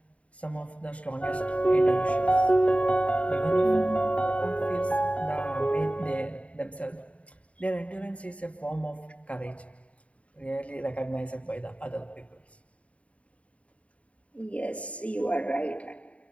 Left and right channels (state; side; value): late; right; 0.065 ms